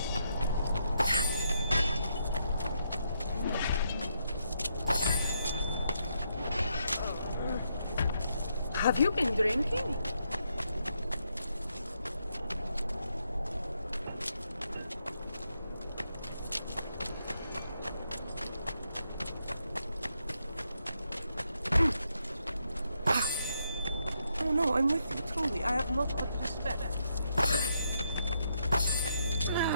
Have you been drinking? Oh no, I'm with you, truly. I have not but respect.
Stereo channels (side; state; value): both; inverted; correlation -0.79